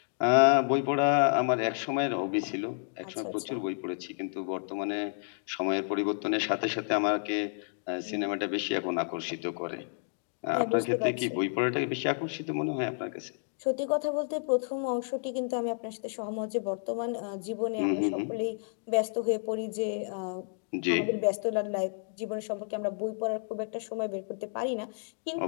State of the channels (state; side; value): silent; right; digital silence